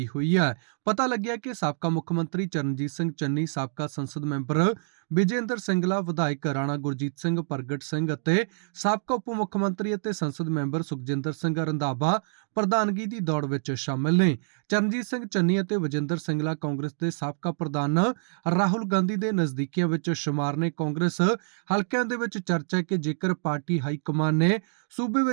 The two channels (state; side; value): silent; left; digital silence